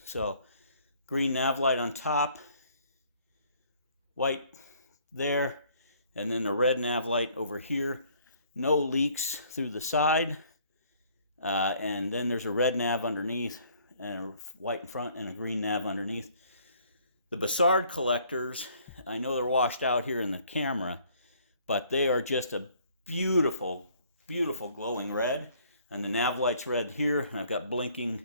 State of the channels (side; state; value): both; inverted; correlation -0.61